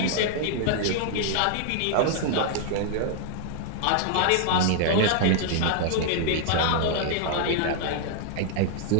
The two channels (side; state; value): both; different; correlation 0.00